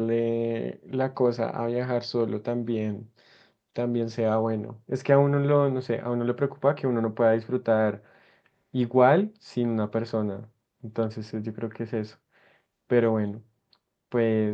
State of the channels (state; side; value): identical; both; correlation 1.00